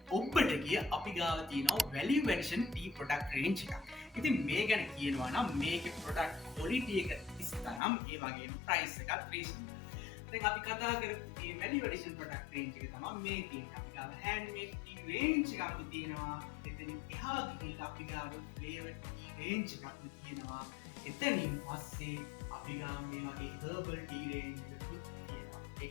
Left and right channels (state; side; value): drops out; right; at 7.8 s